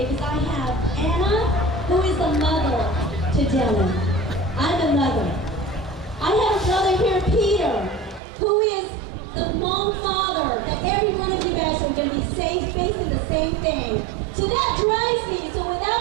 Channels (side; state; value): left; drops out; at 8.2 s